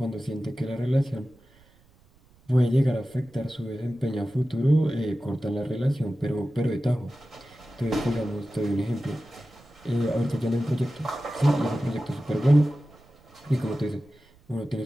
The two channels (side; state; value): right; noise; rumble, 29 dB below the sound